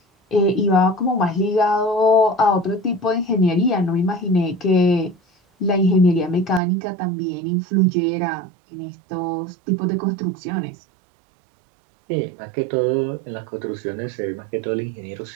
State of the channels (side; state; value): left; drops out; at 6.6 s